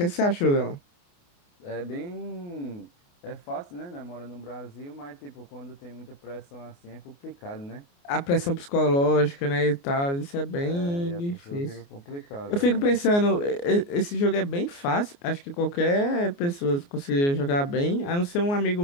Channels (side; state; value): right; late; 29 ms